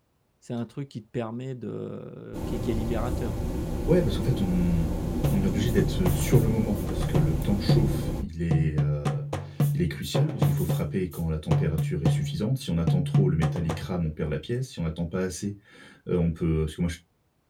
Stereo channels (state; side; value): identical; both; correlation 1.00